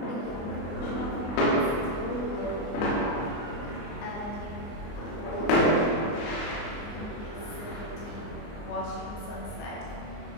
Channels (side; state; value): right; late; 24 ms